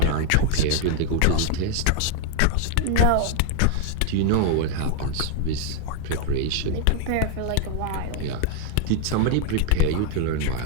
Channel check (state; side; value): different; both; correlation 0.00